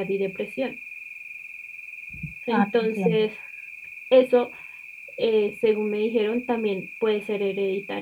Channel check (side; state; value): both; identical; correlation 1.00